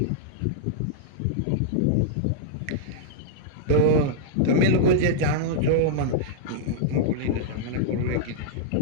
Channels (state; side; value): different; both; correlation -0.02